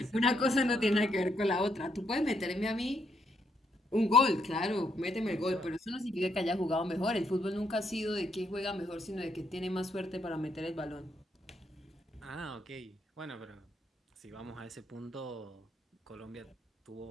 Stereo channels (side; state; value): both; normal; correlation 0.75